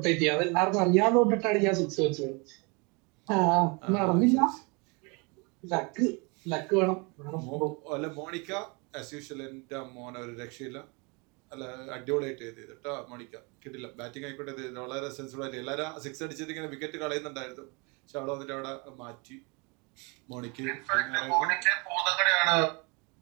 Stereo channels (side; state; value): left; quieter; 30.4 dB